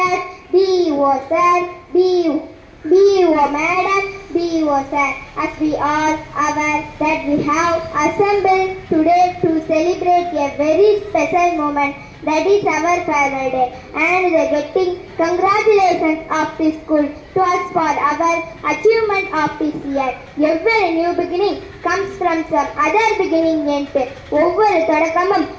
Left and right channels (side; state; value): both; identical; correlation 1.00